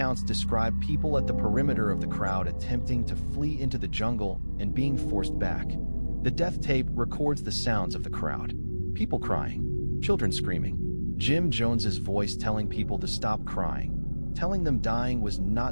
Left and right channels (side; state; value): both; inverted; correlation -1.00